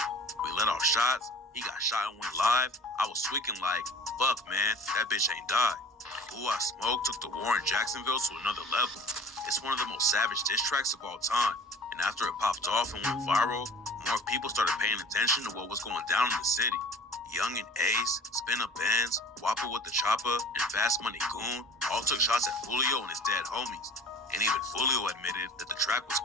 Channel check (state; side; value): normal; both; correlation 0.45